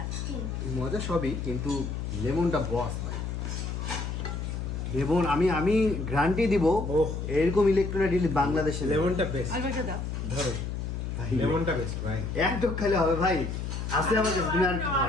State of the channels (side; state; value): left; noise; hum, 4 dB below the sound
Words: মজা সবই, কিন্তু লেমনটা বস ভাই। লেমন আমি গ্যারান্টি দিব, এরকম ইলেকট্রোলাইট বাংলাদেশে লেমনটা বেস্ট। আর একটা দাও। ধরো, লেমনটা বেস্ট ভাই। এক টক খাইলে হবে ভাই। আছে আমাদের তুমি আর কি